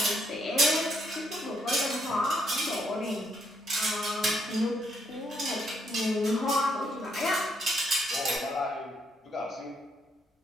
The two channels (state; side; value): normal; both; correlation 0.74